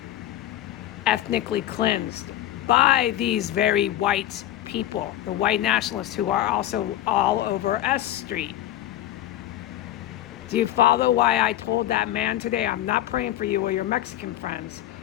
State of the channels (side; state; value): right; quieter; 13.6 dB